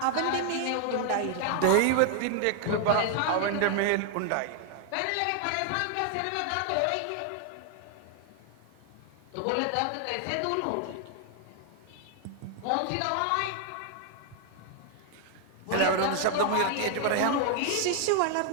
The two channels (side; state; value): both; different; correlation 0.00